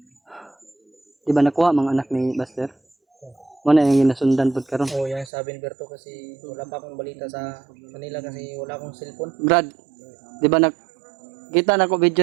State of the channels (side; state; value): left; drops out; at 5.3 s